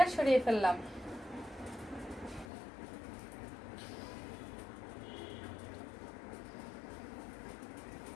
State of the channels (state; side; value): drops out; right; at 2.5 s